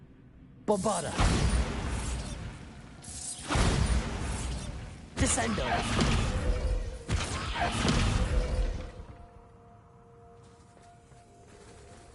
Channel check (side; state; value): both; identical; correlation 1.00